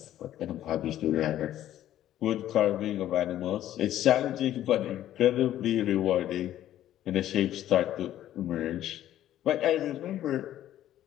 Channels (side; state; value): right; quieter; 12.5 dB